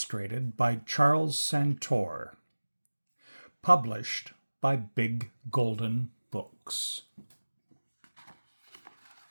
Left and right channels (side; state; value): both; inverted; correlation -1.00